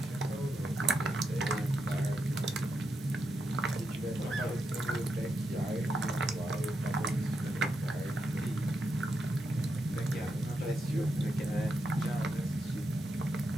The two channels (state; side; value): normal; both; correlation 0.84